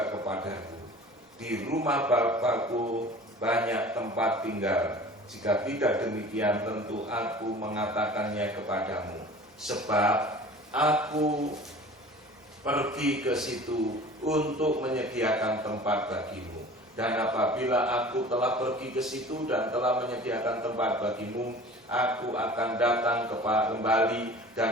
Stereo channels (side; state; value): both; normal; correlation 0.42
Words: kepadaku. Di rumah Bapakku banyak tempat tinggal. Jika tidak demikian, tentu aku mengatakannya kepadamu. Sebab aku pergi ke situ untuk menyediakan tempat bagimu. Dan apabila aku telah pergi ke situ dan telah menyediakan tempat bagimu, aku akan datang kembali